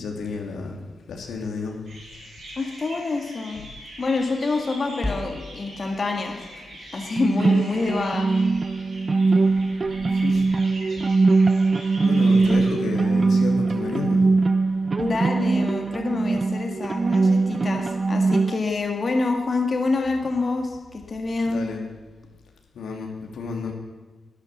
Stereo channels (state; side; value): normal; both; correlation 0.92